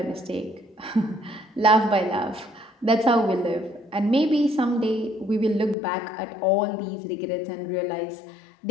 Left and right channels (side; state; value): right; drops out; at 5.8 s